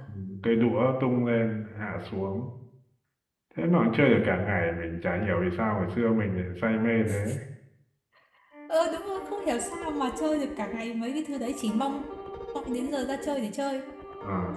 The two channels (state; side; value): identical; both; correlation 1.00